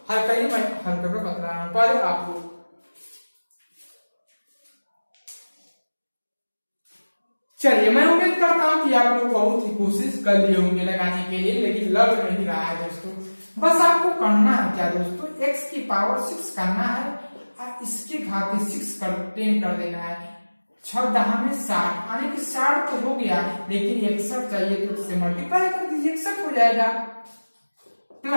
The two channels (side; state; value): both; inverted; correlation -1.00